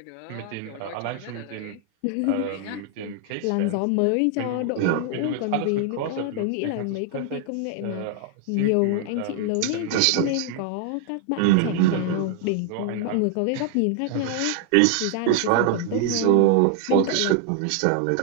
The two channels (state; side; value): different; both; correlation 0.00